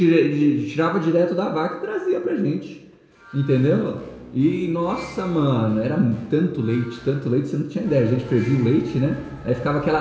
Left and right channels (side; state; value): both; identical; correlation 1.00